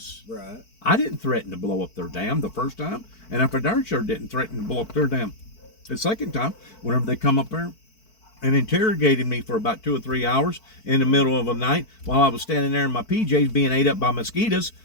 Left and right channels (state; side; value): late; right; 4.5 ms